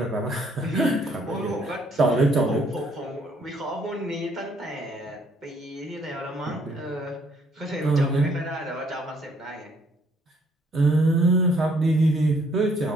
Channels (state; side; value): normal; both; correlation 0.65